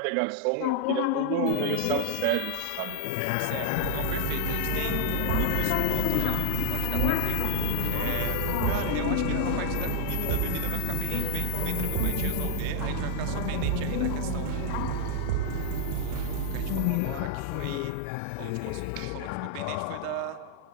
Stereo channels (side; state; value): both; different; correlation -0.01